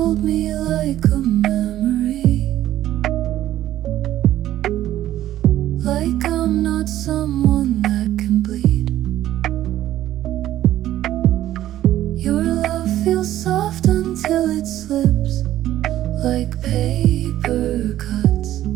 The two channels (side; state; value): left; quieter; 13.3 dB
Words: me like a memory, like I'm not someone that can bleed. Your love feels soft until it slips, like paper cuts